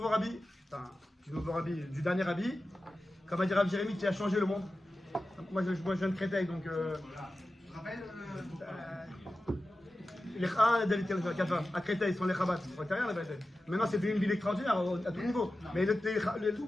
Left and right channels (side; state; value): both; normal; correlation 0.94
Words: rabbi, enfin, du dernier rabbi. Comme a dit Rav Jérémy, qui a changé le monde. Moi je viens de Créteil, donc. Tu te rappelles Les David Kafa, à Créteil, ils sont les Chabad. C'est rien la vérité. Maintenant, c'est devenu une ville extraordinaire à tout niveau. Mais